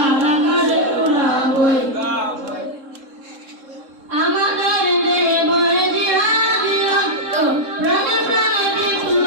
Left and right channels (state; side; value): late; left; 3.7 ms